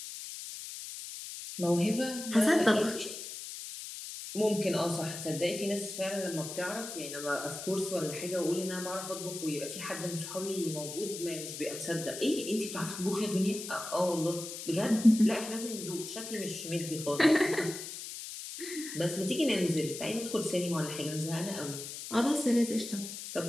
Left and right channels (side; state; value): left; noise; hiss, 9 dB below the sound